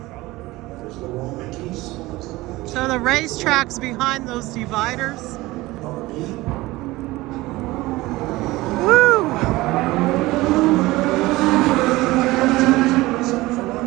So the racetrack's behind those dividers. Woo!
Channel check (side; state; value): left; quieter; 19.5 dB